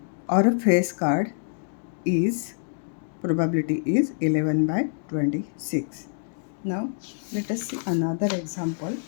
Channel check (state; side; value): silent; right; digital silence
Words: or a face card is, probability is 11 by 26. Now let us see another example.